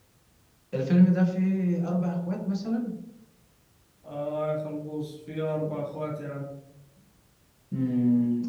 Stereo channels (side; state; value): both; identical; correlation 1.00